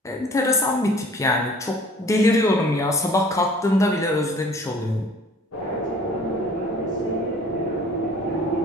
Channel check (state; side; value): normal; both; correlation 0.50